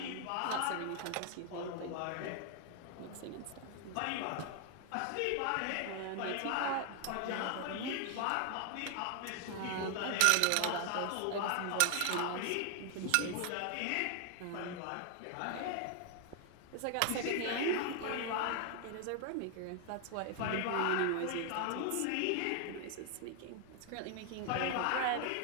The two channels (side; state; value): both; different; correlation 0.00